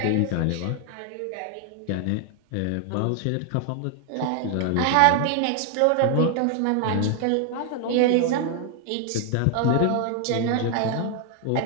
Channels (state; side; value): different; both; correlation 0.00